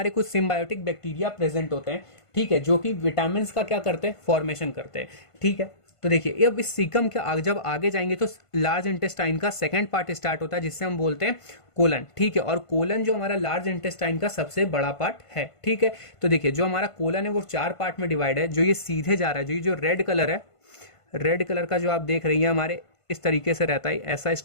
कुछ सिम्बायोटिक बैक्टीरिया प्रेजेंट होते हैं, ठीक है, जो कि विटामिन का क्या करते हैं, फॉर्मेशन करते हैं, ठीक है। तो देखिए अब इस सीकम के जब आगे जाएंगे तो लार्ज इंटेस्टाइन का सेकंड पार्ट स्टार्ट होता है जिससे हम बोलते हैं कोलन, ठीक है। और कोलन जो हमारा लार्ज इंटेस्टाइन का सबसे बड़ा पार्ट है, ठीक है। तो देखिए जो हमारा कोलन है वो 4 पार्ट में डिवाइड है, जो ये सीधे जा रहा है, जो रेड कलर है, रेड कलर का जो आप देख रही हैं हमारे इस तरीके से रहता है, ऐसा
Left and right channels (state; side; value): late; right; 1.5 ms